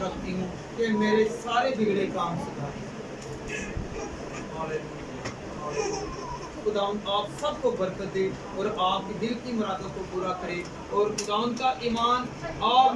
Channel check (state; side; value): identical; both; correlation 1.00